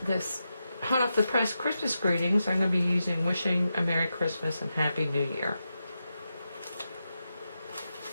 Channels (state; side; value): inverted; both; correlation -0.88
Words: this hot off the press Christmas greetings. I'm going to be using Wishing a Merry Christmas and Happy New Year.